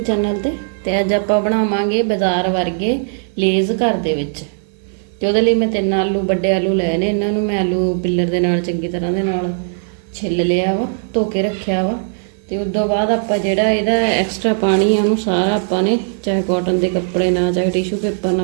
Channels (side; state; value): left; silent; 55 dB below the other